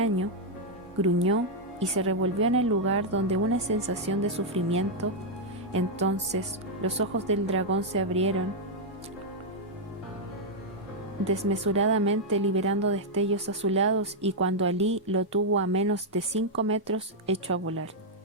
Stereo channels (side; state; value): both; normal; correlation -0.03